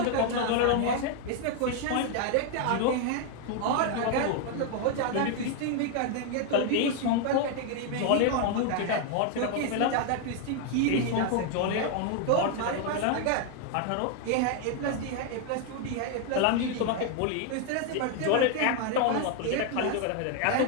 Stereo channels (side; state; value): both; different; correlation 0.01